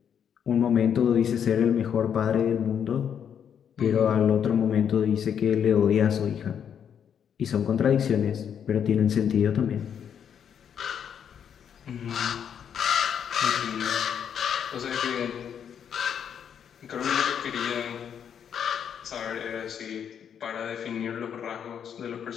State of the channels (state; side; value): quieter; right; 8.3 dB